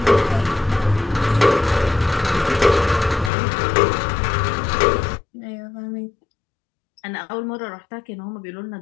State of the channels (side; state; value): right; drops out; at 3.3 s